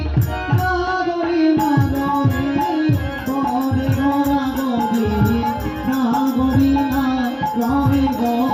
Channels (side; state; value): both; identical; correlation 1.00